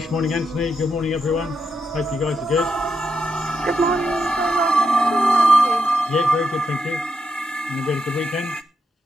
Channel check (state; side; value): normal; both; correlation 0.83